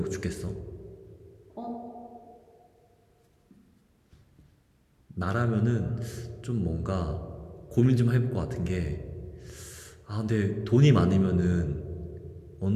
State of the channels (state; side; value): identical; both; correlation 1.00